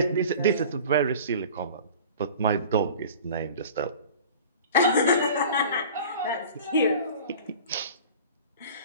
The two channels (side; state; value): both; inverted; correlation -0.41